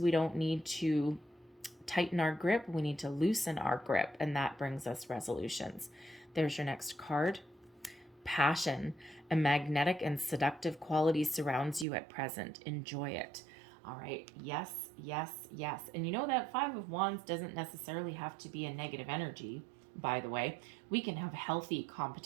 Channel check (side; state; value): left; drops out; at 11.9 s